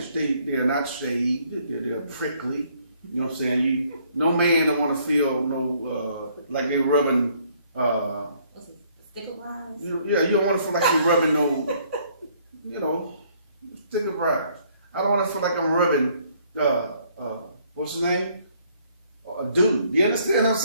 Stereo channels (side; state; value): both; inverted; correlation -0.65